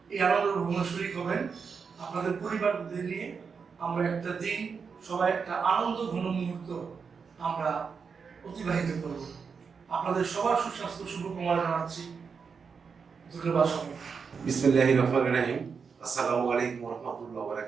এই আনন্দ ভ্রমণে শরীক হবেন। আপনাদের পরিবারদের নিয়ে আমরা একটা দিন সবাই একটা আনন্দ ঘন মুহূর্ত আমরা অতিবাহিত করব। আপনাদের সবার সুস্বাস্থ্য শুভকামনা জানাচ্ছি। ধন্যবাদ সবাই। বিসমিল্লাহির রহমানির রহিম। আসসালামু আলাইকুম ওয়া রাহমাতুল্লাহি ওয়া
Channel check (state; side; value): quieter; left; 5.7 dB